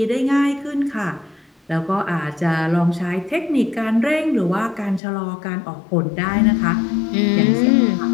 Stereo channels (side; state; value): right; drops out; at 5.0 s